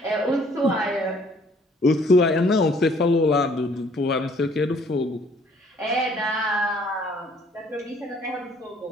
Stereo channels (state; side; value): normal; both; correlation 0.60